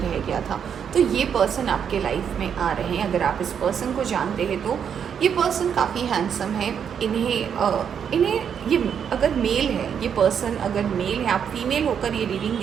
गया था। तो ये पर्सन आपके लाइफ में आ रहे हैं। अगर आप इस पर्सन को जानते हैं तो ये पर्सन काफ़ी हैंडसम है। इन्हें ये अगर मेल है, ये पर्सन अगर मेल है, आप फीमेल होकर ये रीडिंग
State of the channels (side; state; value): left; quieter; 7.8 dB